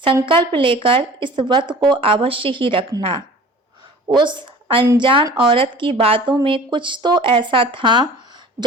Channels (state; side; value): normal; both; correlation 0.43